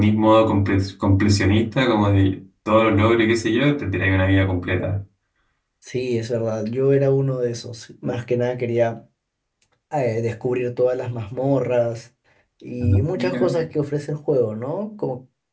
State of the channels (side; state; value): both; identical; correlation 1.00